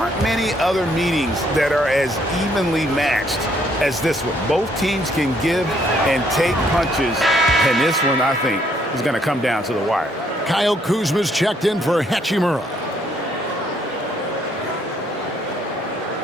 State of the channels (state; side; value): normal; both; correlation 0.68